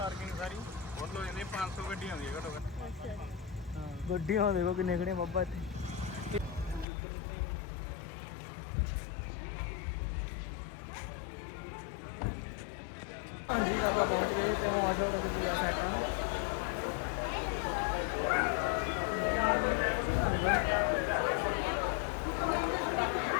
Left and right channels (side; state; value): right; drops out; at 6.9 s